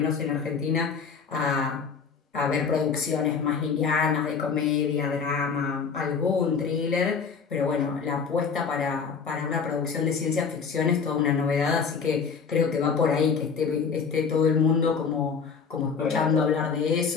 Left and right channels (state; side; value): quieter; right; 5.8 dB